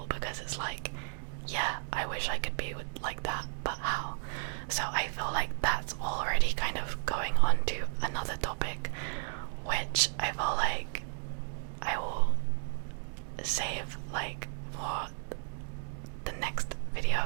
because it's like, yeah, I wish I could be like that, but how? So I feel like that's already kind of going on to another topic, which I feel like I will save like for the next video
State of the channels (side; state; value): left; silent; 55 dB below the other